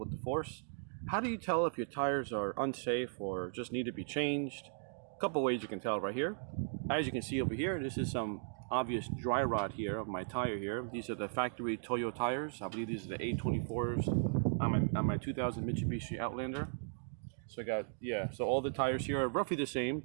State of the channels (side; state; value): left; silent; digital silence